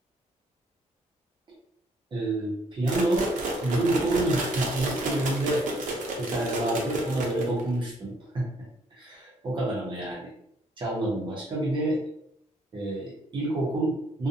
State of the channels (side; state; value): both; normal; correlation 0.66